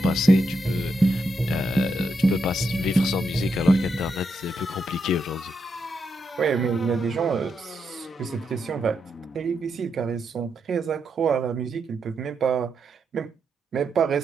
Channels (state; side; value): normal; both; correlation 0.82